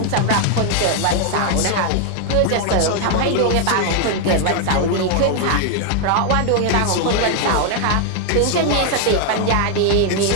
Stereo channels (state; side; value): different; both; correlation 0.00